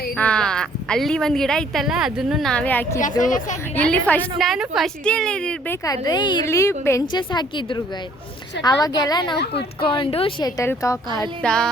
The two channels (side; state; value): both; normal; correlation 0.60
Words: ಅಲ್ಲಿ ಒಂದು ಗಿಡ ಇತ್ತಲ್ಲ, ಅದನ್ನು ನಾವೇ ಹಾಕಿದ್ದು. ಇಲ್ಲಿ ನಾನು ಫಸ್ಟ್ ಇಯರ್ ಇರಬೇಕಾದ್ರೆ ಇಲ್ಲಿ ಬೆಂಚಸ್ ಹಾಕಿದ್ರು ಗೈಸ್. ಅವಾಗೆಲ್ಲ ನಾವು ಕುತ್ಕೊಂಡು ಶಟಲ್ ಕಾಕ್ ಆಡ್ತಾ,